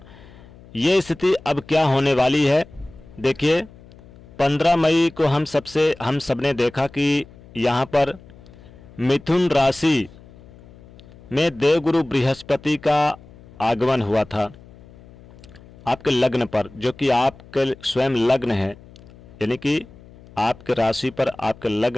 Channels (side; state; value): left; noise; hum, 22 dB below the sound